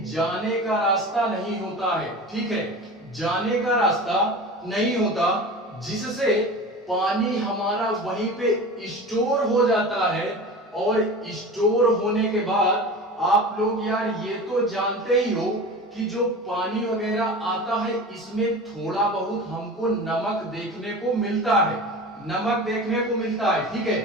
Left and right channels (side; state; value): both; normal; correlation 0.33